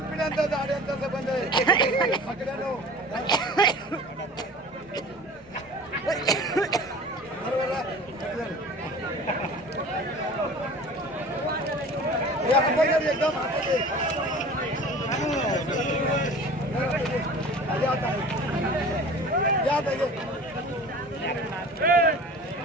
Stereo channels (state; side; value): normal; both; correlation 0.41